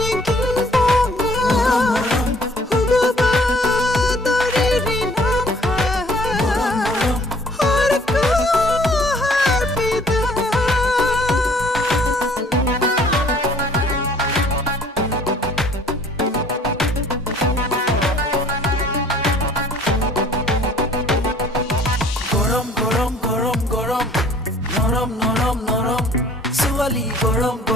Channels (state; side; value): normal; both; correlation 0.56